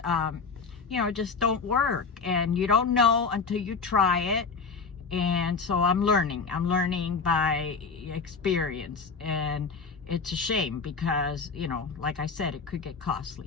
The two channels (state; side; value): quieter; right; 4.9 dB